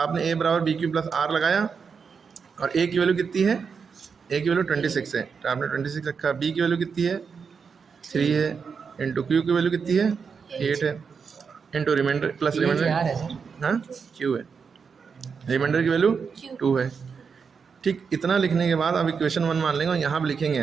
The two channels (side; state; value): left; quieter; 5.9 dB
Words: ए बराबर बी क्यू प्लस आर लगाया, और ए की वैल्यू कितनी है, ए की वैल्यू 26 है तो आपने 26 रखा। बी की वैल्यू कितनी है, 3 है, इंटू क्यू की वैल्यू कितनी है, 8 है, इंटू रिमाइंडर प्लस रिमाइंडर, हाँ क्यू है, रिमाइंडर की वैल्यू 2 है, ठीक। इतना लिखने के बाद अब इक्वेशन 1 मान लेंगे और यहाँ पर